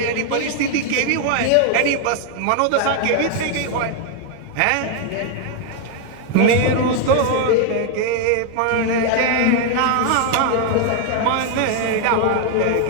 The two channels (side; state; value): both; different; correlation 0.00